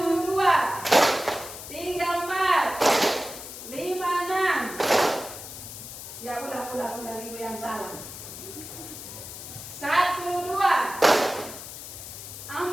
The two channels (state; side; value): noise; left; hiss, 11 dB below the sound